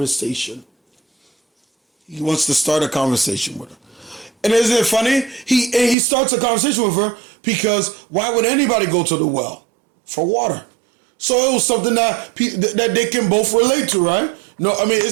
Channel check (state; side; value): drops out; left; at 6.0 s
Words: He wants to start a conversation with her. And isn't it funny? He starts a conversation with her because why would anybody go to the well? For water. So it was something that they can both relate to, right? No, I mean,